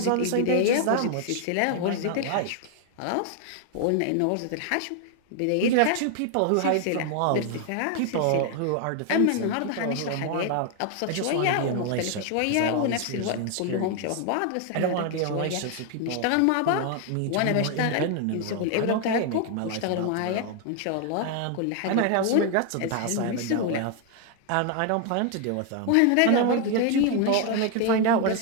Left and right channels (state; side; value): different; both; correlation 0.00